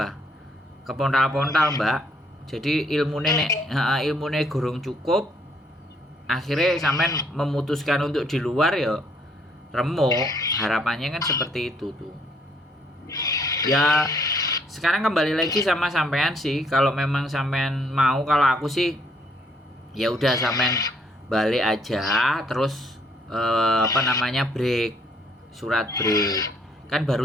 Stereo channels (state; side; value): normal; both; correlation 0.67